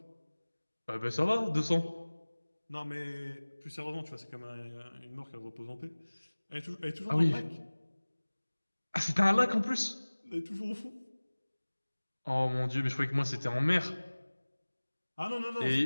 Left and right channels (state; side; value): inverted; both; correlation -1.00